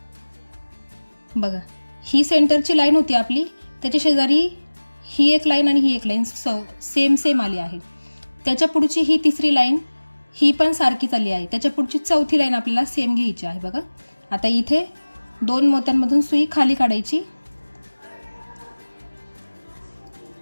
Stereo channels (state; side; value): inverted; both; correlation -1.00